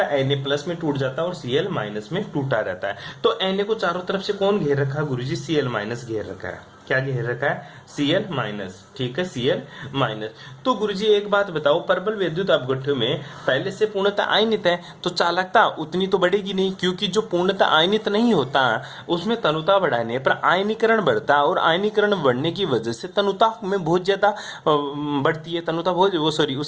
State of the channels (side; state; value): both; identical; correlation 1.00